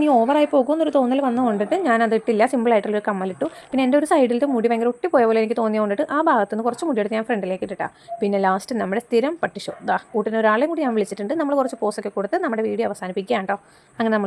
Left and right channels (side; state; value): both; identical; correlation 1.00